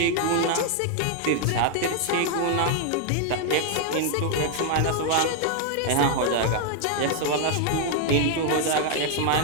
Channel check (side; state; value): both; different; correlation 0.00